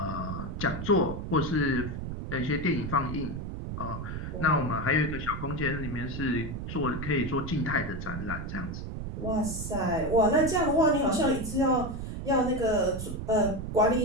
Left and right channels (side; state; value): right; noise; rumble, 6 dB below the sound